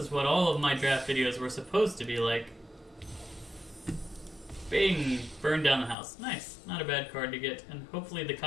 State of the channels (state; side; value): drops out; right; at 6.0 s